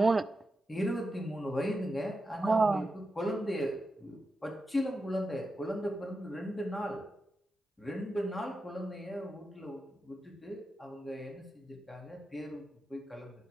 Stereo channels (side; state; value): both; normal; correlation 0.89